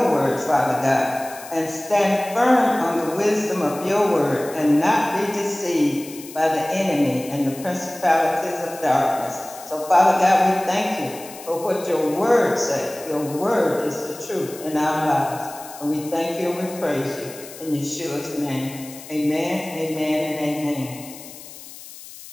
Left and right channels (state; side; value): noise; left; hiss, 16 dB below the sound